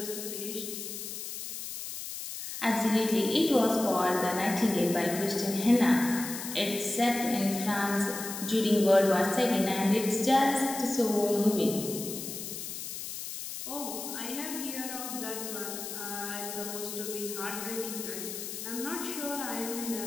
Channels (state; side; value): noise; left; hiss, 7 dB below the sound